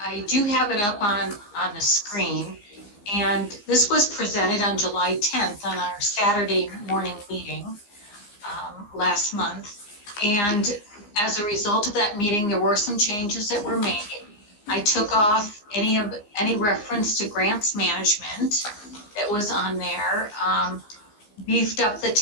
do have it up on the screen, and this was presented on July 10th on our Saturday morning meeting last month. And as a result of that meeting, there were some changes that were made. I took off any reference to grants management that was on there, beefed up the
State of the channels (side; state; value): right; late; 15 ms